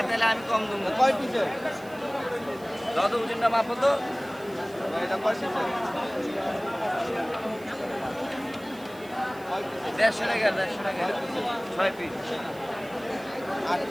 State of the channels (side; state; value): right; noise; hiss, 23 dB below the sound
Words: তাহলে আমি কম দেবো। কয় পিসের যত ওজনটা মাপো তো এটা কয় পিসের 150 টাকা 6 পিস 8